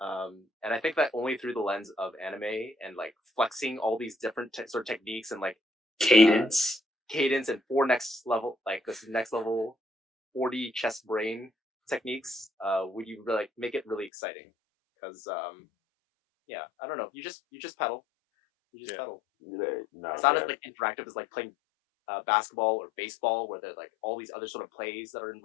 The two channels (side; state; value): right; drops out; at 14.1 s